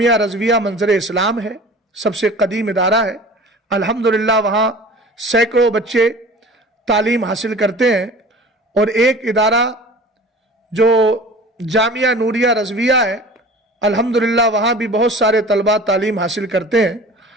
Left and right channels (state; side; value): normal; both; correlation 0.42